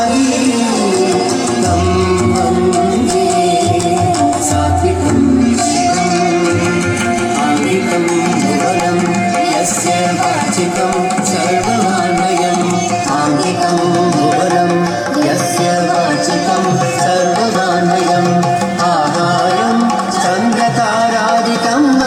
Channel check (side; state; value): both; identical; correlation 1.00